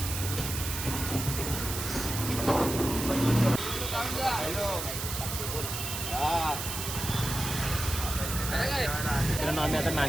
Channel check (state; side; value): noise; right; hiss, 5 dB below the sound